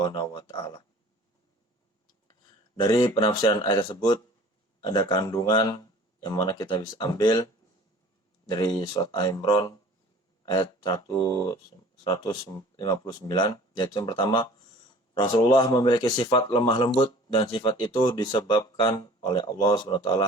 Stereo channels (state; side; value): normal; both; correlation 0.47